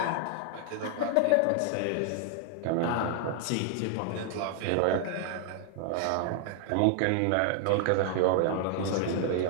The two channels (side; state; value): both; different; correlation 0.00